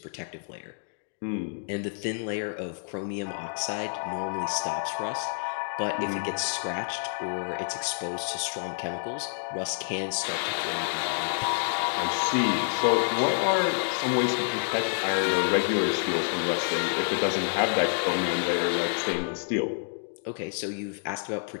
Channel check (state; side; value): silent; right; digital silence